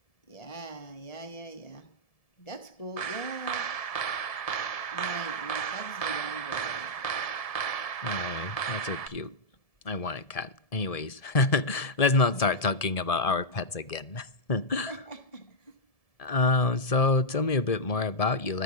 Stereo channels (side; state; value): right; late; 1.7 ms